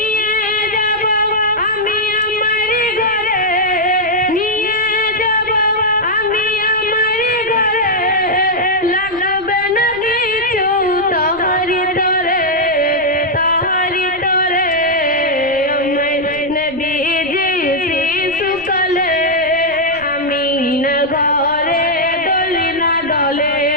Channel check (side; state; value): right; noise; rumble, 21 dB below the sound